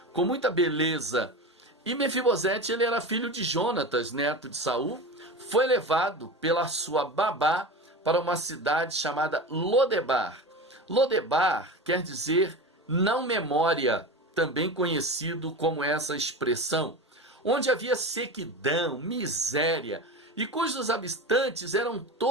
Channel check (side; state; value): both; normal; correlation 0.28